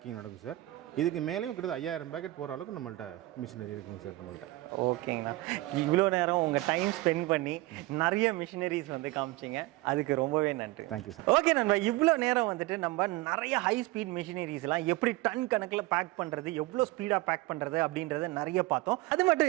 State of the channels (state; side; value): quieter; left; 19.3 dB